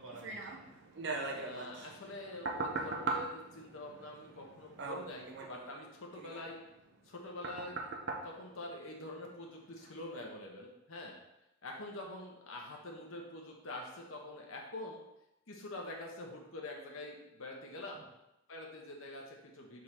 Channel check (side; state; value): both; normal; correlation -0.05